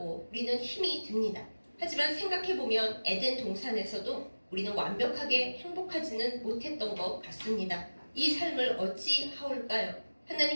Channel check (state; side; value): inverted; both; correlation -1.00